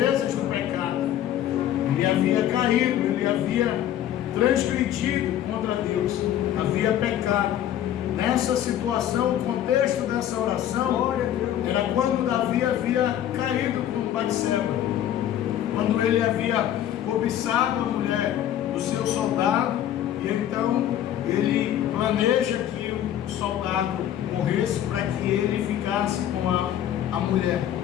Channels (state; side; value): quieter; right; 11.3 dB